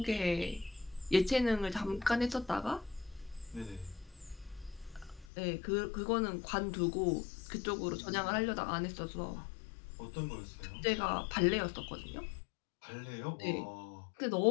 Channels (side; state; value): right; drops out; at 5.3 s